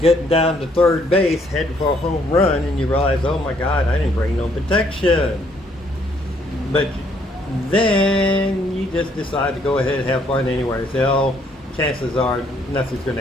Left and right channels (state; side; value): normal; both; correlation 0.67